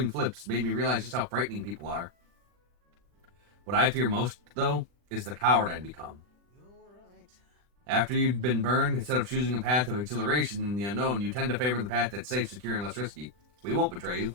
flips made me realize just how frightening people are. What I fear most, though, is the coward I'd become. After you've been burned, instead of choosing a path of exhilaration in the unknown, you tend to favor the path that's safe, secure, and less risky. We won't betray you.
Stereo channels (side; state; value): left; late; 40 ms